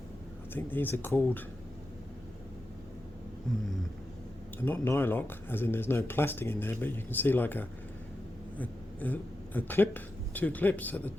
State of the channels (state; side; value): normal; both; correlation 0.89